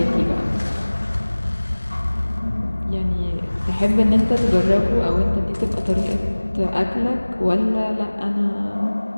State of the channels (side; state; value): both; inverted; correlation -1.00